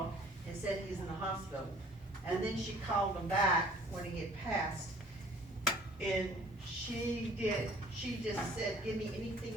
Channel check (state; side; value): normal; both; correlation 0.53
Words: and said he's in the hospital. And then she called him back when he had passed. And she just said, give me anything